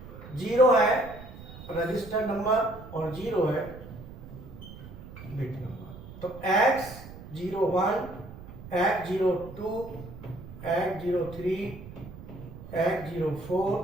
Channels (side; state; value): right; noise; rumble, 14 dB below the sound